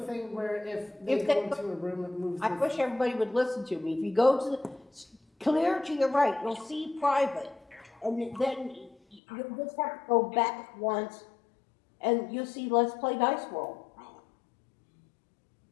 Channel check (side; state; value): right; drops out; at 9.2 s